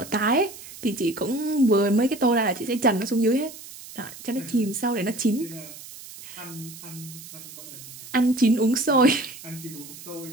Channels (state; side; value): noise; right; hiss, 15 dB below the sound